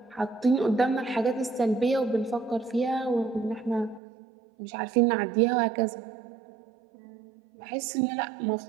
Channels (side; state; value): left; drops out; at 4.0 s